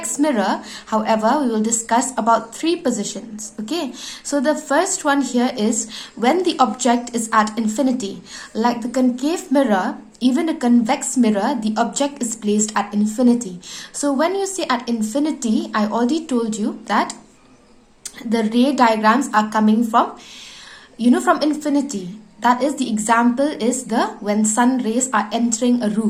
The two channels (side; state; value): both; identical; correlation 1.00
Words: mirror, however, we will discuss about 3 positions. Okay, so the first one here is when the object is at infinity. Like the concave mirror, even a convex mirror, the object is placed at infinity. So when you say at infinity, I already told you that the ray diagrams are coming from, from infinity. That is, the example is when sun rays are entering a